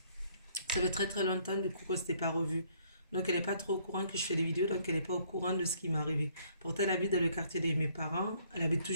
ça fait très longtemps du coup qu'on s'était pas revu. Donc elle n'est pas trop au courant que je fais des vidéos, donc elle n'est pas au courant de ce qui m'est arrivé. Pourtant elle habite dans le quartier de mes parents. Elle habite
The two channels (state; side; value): inverted; both; correlation -0.64